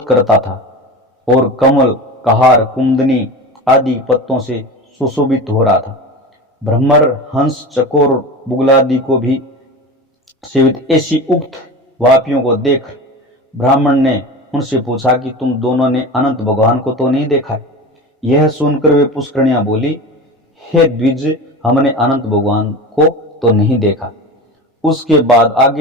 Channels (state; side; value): normal; both; correlation 0.29